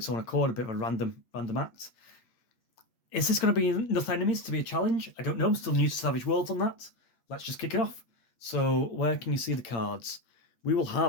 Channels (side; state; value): right; late; 8.8 ms